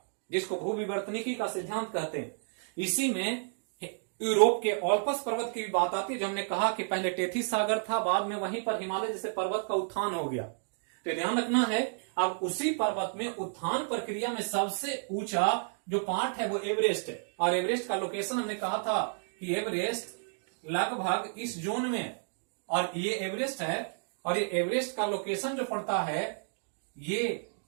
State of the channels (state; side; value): silent; left; digital silence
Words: जिसको भूविवर्तनिकी का सिद्धांत कहते हैं। इसी में यूरोप के ओल्पस पर्वत की भी बात आती है, जो हमने कहा कि पहले टेथिस सागर था, बाद में वहीं पर हिमालय जैसे पर्वत का उत्थान हो गया। तो ध्यान रखना है, अब उसी पर्वत में उत्थान प्रक्रिया में सबसे ऊंचा जो पार्ट है वो एवरेस्ट है। और एवरेस्ट का लोकेशन हमने कहा था कि एवरेस्ट लगभग इस जोन में है, और ये एवरेस्ट है, और ये एवरेस्ट का लोकेशन जो पड़ता है ये